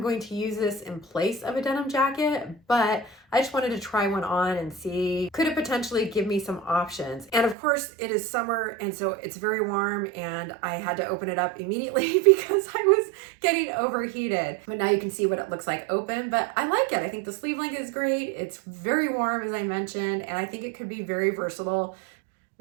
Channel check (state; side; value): drops out; left; at 7.6 s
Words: going to use this in place of a denim jacket, but I just wanted to try one on and see, could it potentially give me some options? And of course it is summer, and so it's very warm, and I had to open it up immediately because I was getting overheated. But now you can see what it looks like open, but I like it. I think the sleeve length is great. It's very warm, as I mentioned, and I think it could be very versatile.